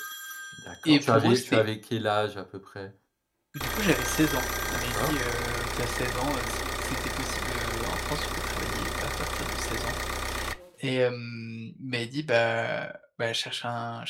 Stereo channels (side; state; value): both; identical; correlation 1.00